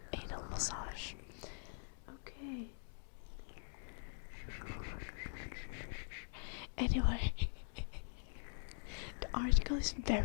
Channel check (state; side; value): silent; right; digital silence